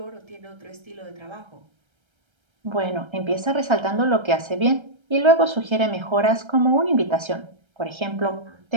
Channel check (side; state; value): left; late; 1.3 ms